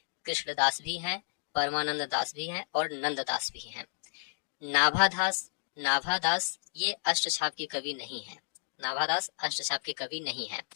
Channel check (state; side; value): silent; right; digital silence